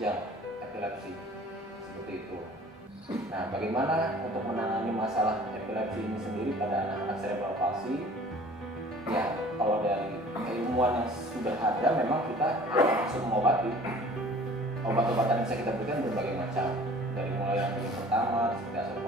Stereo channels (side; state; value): both; normal; correlation 0.49